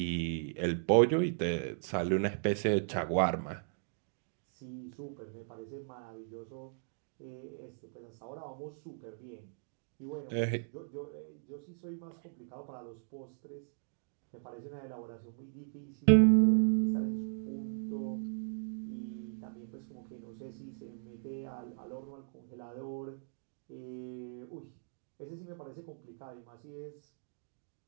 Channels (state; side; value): silent; left; digital silence